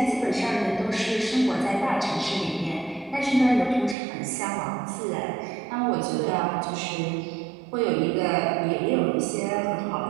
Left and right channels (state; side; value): drops out; left; at 4.0 s